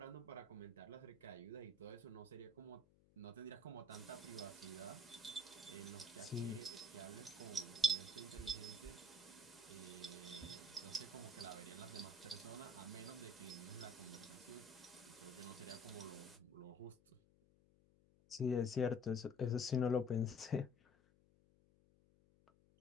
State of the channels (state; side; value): noise; left; hum, 28 dB below the sound